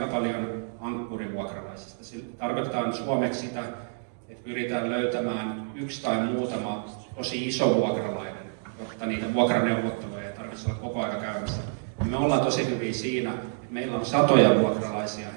paljon ankkurivuokralaisista. Sillä tarkoitetaan suomeksi sitä, että pyritään löytämään yksi tai muutama tosi iso vuokralainen, jotta niitä vuokraneuvotteluja ei tarvitse olla koko ajan käymässä. Me ollaan tosi hyviä siinä, että meillä on satoja vuokralaisia,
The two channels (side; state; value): left; silent; digital silence